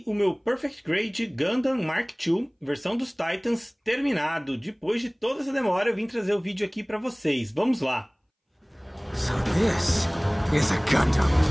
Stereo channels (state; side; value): identical; both; correlation 1.00